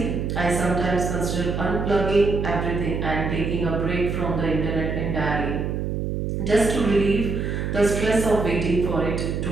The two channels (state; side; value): noise; right; hum, 2 dB below the sound